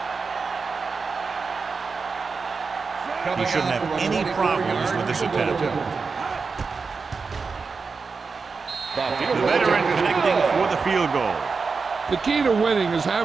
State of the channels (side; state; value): left; quieter; 4.8 dB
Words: He shouldn't have any problems with this attempt. The veteran connecting for the field goal. The key to winning is